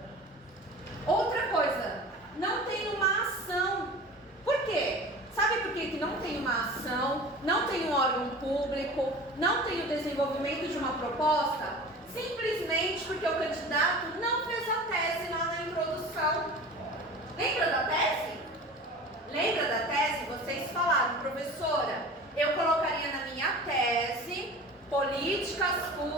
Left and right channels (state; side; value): normal; both; correlation 0.38